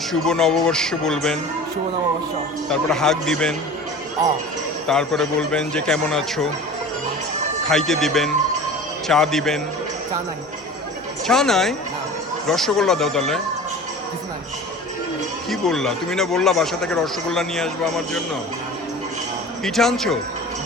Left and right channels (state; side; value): normal; both; correlation 0.38